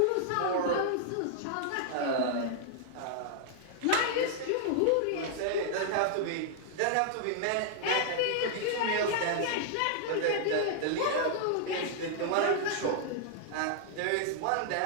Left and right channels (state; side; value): different; both; correlation -0.01